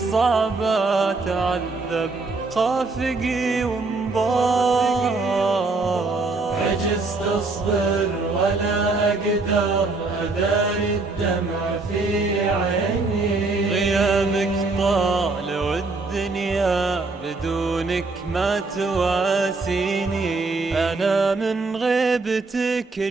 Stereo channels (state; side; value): quieter; left; 3.6 dB